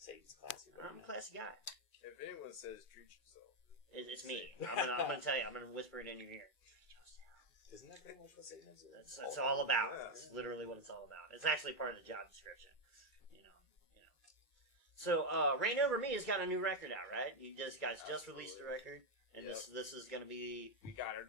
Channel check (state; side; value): late; right; 2.4 ms